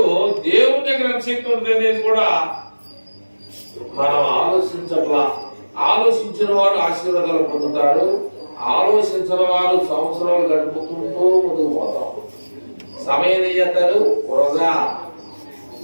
దేవుడి దగ్గర ఎంత శక్తి ఉంటుంది అనేది కూడా మనం ఆలోచించట్లా. ఆలోచించిన వాడు ఆశీర్వాదాలు పొందుతాడు. ఆలోచించిన వారు సంవత్సరాలు గడుపుతుంటూ ముందుకు పోతాం. సమయం ఏం చేస్తారు?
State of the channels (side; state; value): both; inverted; correlation -1.00